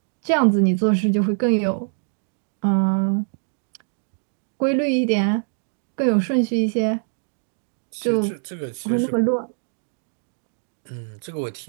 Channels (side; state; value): left; silent; digital silence